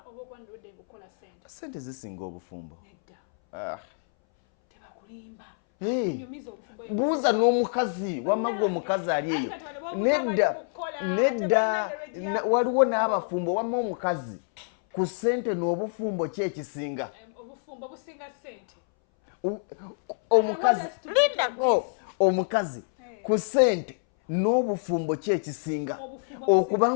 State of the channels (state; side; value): silent; right; 60 dB below the other